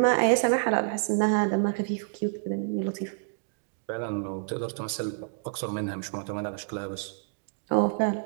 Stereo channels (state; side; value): silent; left; digital silence